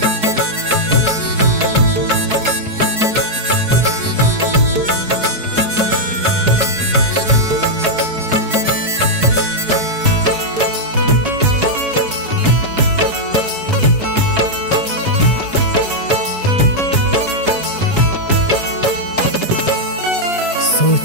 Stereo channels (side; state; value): left; late; 4.7 ms